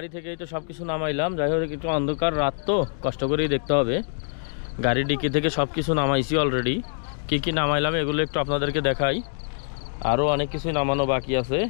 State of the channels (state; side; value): silent; right; digital silence